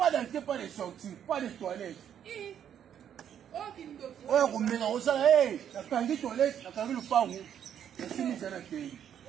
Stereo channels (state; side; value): quieter; left; 9.3 dB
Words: d'entrée, pas de sortie, pas de toilettes. Ouais, on met dans ça, hey, la canne toilette, la canne le pan. Et